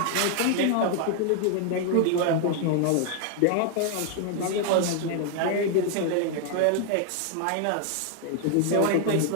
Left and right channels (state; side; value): different; both; correlation 0.00